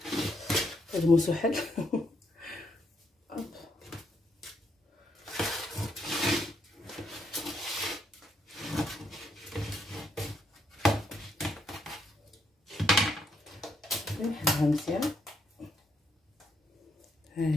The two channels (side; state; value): both; normal; correlation 0.75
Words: هاد الموسو حل. نحلها مزيان. ها